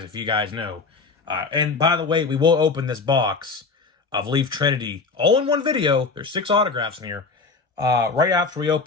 if you guys know. And by the way, we will open this box of Leaf Trinity all in one video. There's 6 autographs in here. Right after we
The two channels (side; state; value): right; quieter; 4.3 dB